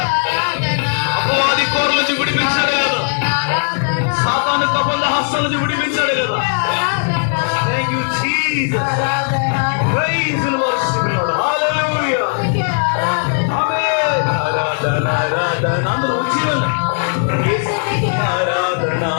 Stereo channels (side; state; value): right; silent; 66 dB below the other